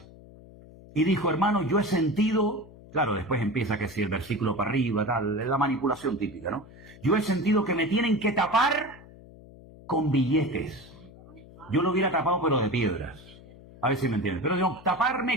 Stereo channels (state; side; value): noise; left; hum, 20 dB below the sound